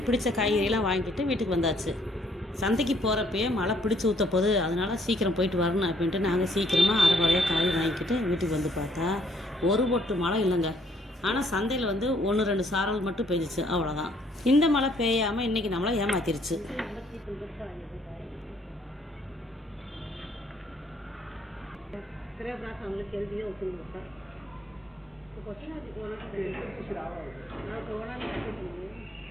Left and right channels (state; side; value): normal; both; correlation 0.65